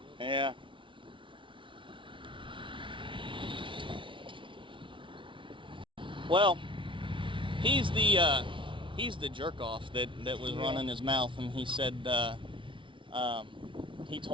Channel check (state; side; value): late; left; 0.25 ms